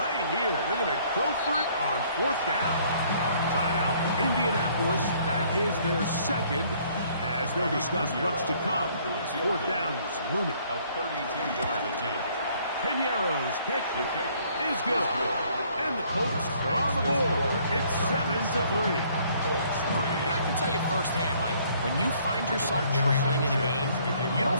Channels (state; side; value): inverted; both; correlation -0.62